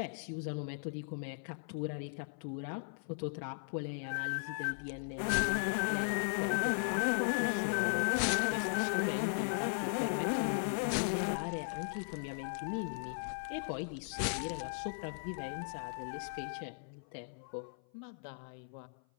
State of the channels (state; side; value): silent; right; 53 dB below the other